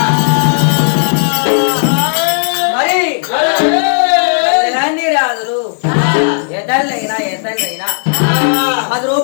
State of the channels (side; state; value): right; silent; digital silence